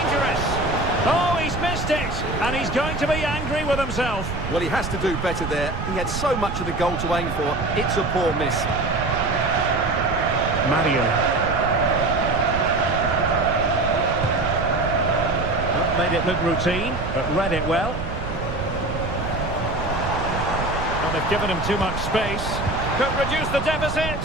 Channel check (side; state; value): right; noise; rumble, 6 dB below the sound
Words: Oh, he's missed it. And he's going to be angry with himself. Well, he has to do better there. He had so much of the goal to aim for. It's a poor miss. Mario. Not made it look routine, but read it well. Well, they've given him too much space. Could reduce the